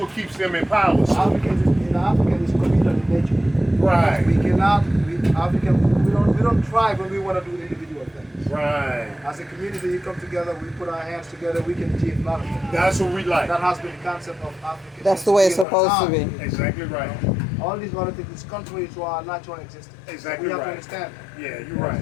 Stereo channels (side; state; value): right; drops out; at 15.7 s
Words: keeps them in power. So. African is communal in nature. Right. We cannot, we don't thrive when we want to do individual things. Right. As a community, we come together, we put our hands together, we can achieve a lot of things. That's what we like. That has been the concept of Africa. That's the way it's supposed to be. Exactly right. All these other things is contrary to our natural existence. Exactly we have right. to understand that. Yeah, you're right.